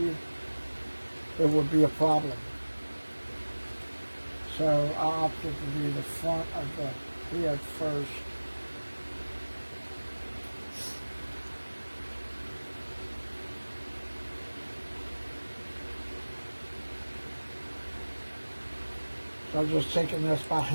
it would be a problem. So I opted to do the front of the head first. So I'm just taking this by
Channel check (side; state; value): both; inverted; correlation -1.00